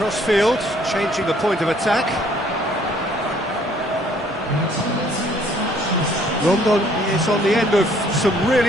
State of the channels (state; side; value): normal; both; correlation 0.61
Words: changing the point of attack. Rondon is on the end of some